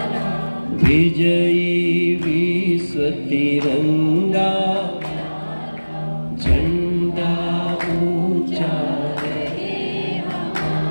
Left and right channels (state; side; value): inverted; both; correlation -1.00